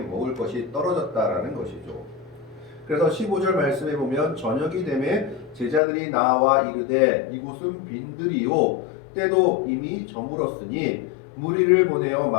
것이 떨어졌다라는 것이죠. 그래서 15절 말씀에 보면 저녁이 되매 제자들이 나와 이르되 이곳은 빈들이요 때도 이미 저물었으니 무리를 보내어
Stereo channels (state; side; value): drops out; right; at 5.8 s